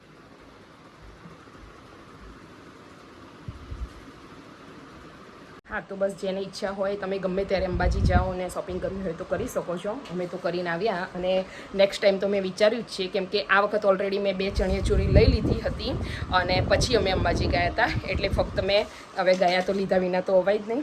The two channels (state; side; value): identical; both; correlation 1.00